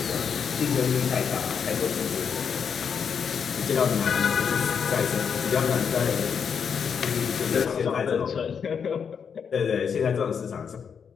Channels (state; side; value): quieter; right; 6.8 dB